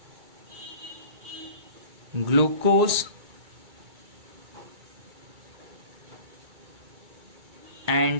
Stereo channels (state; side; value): late; left; 2.2 ms